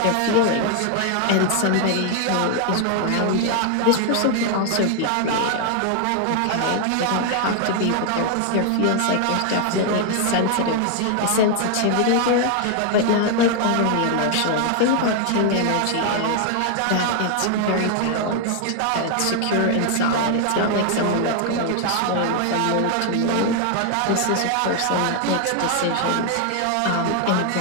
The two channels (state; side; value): different; both; correlation 0.00